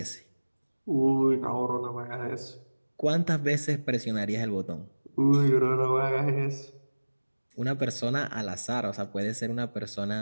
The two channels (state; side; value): inverted; both; correlation -1.00